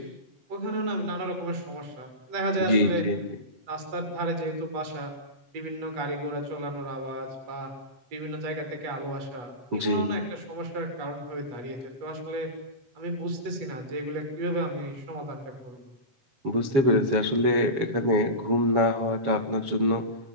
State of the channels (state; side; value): late; left; 7.3 ms